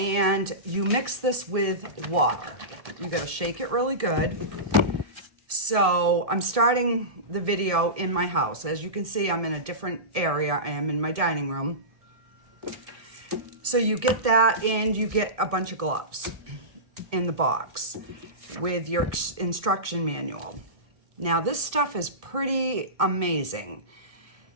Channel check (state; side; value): late; left; 1.7 ms